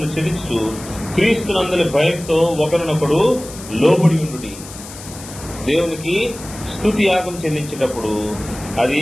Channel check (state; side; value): noise; left; hiss, 15 dB below the sound